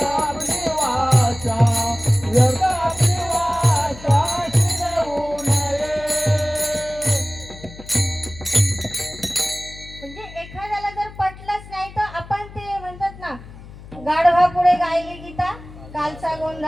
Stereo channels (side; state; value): left; noise; hum, 17 dB below the sound